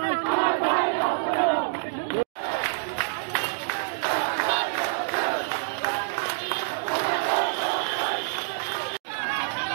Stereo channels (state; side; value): silent; left; digital silence